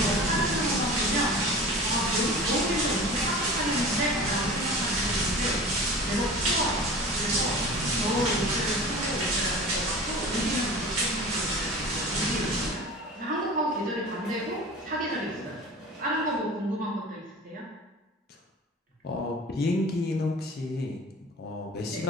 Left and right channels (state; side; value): normal; both; correlation 0.38